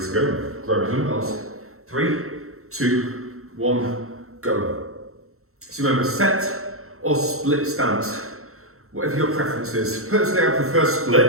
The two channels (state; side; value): late; left; 0.63 ms